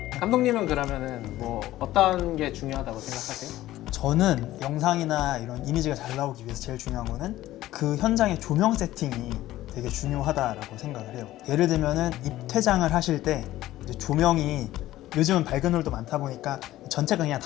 감독님은 그러면은 뭐 어떤 게 중요하다고 생각하세요? 저는 영상이나 이런 이미지가 잘 나오기 위해서 제일 중요한 거는 그 현장의 조명 세팅이 되게 중요하다라고 생각을 해요. 예를 들면은 입퇴장을 하실 때 이제 조명이 요즘은 밝은 홀도 많다 보니까 전체가 그냥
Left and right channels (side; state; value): right; quieter; 15.1 dB